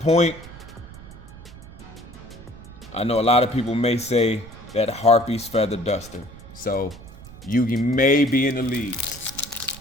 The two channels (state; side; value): noise; right; rumble, 17 dB below the sound